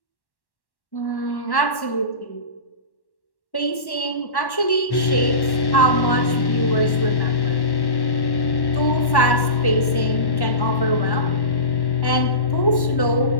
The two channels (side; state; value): right; late; 1.1 ms